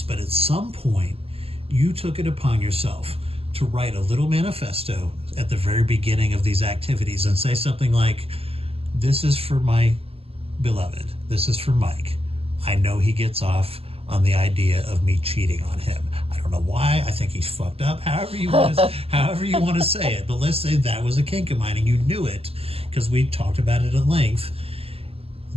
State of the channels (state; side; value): late; left; 0.28 ms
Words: but at some point you took it upon yourself to write a little manifesto at the very beginning of these activities and say something like, this is for my beloved. This is for Mike. I know he gets off on the idea of me cheating on him. I don't know why. I think he's fucked up. However you want to say it. But let's say that was a kink of mine and you knew it because we talked about it at length.